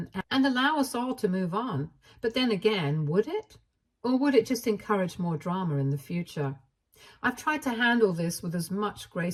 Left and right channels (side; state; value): both; identical; correlation 1.00